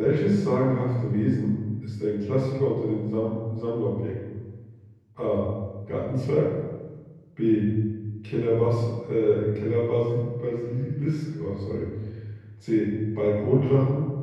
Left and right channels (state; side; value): identical; both; correlation 1.00